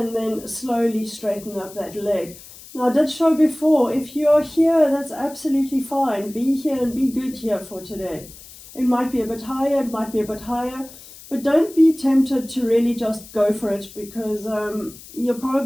then slowly straighten up that leg. Now I did show before, if you are here, that's absolutely fine. Be here and be good here for today. It might be a bit higher, it might be a bit higher, but don't be tempted to really just go for it, because you'll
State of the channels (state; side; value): noise; left; hiss, 19 dB below the sound